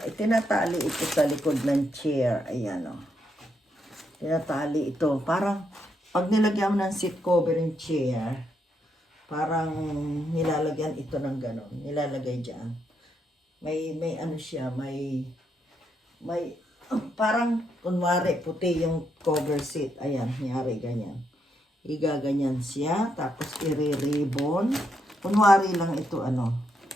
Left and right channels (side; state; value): both; normal; correlation 0.79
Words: tinatali ito sa likod ng chair. Ayan o. Tinatali ito. Parang pag nilagyan mo ng seat cover ng chair, parang nilalagyan ito ng ganon. Nilalagay dyan. May ano siya, may parang kunwari puti yung cover seat. Ayan, nyari ganyan. Igaganyan siya, tapos i-ribbon. Kunwari lang ito